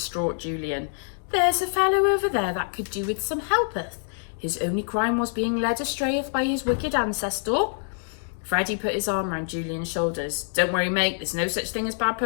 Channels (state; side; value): silent; right; 61 dB below the other